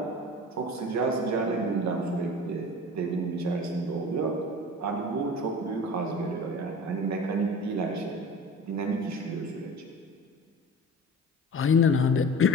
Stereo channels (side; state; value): both; normal; correlation 0.37